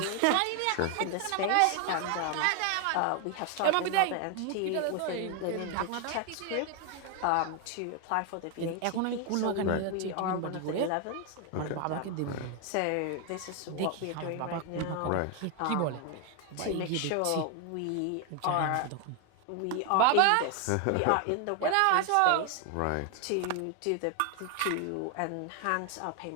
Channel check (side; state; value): both; different; correlation 0.01